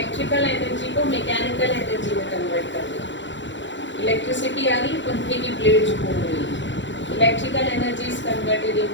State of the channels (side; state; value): right; late; 0.54 ms